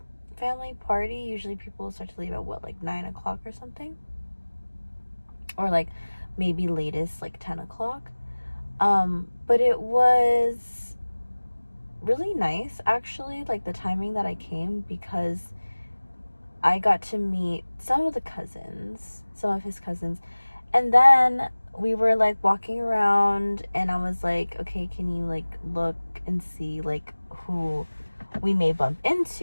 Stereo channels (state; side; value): inverted; both; correlation -1.00